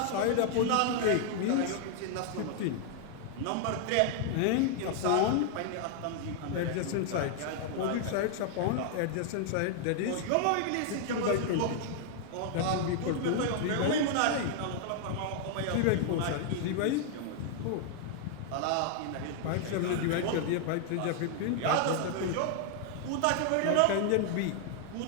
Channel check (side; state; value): both; different; correlation 0.00